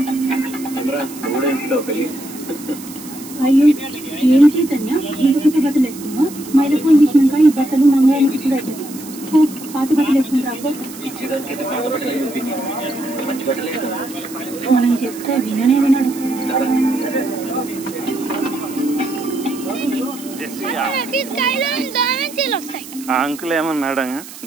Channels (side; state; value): right; noise; hiss, 15 dB below the sound